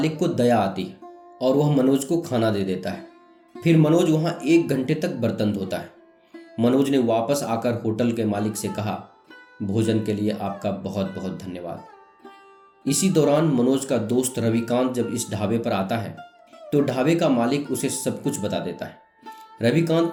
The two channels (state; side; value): identical; both; correlation 1.00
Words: को दया आती है और वह मनोज को खाना दे देता है। फिर मनोज वहां 1 घंटे तक बर्तन धोता है। मनोज ने वापस आकर होटल के मालिक से कहा, भोजन के लिए आपका बहुत बहुत धन्यवाद। इसी दौरान मनोज का दोस्त रविकांत जब इस ढाबे पर आता है तो ढाबे का मालिक उसे सब कुछ बता देता है।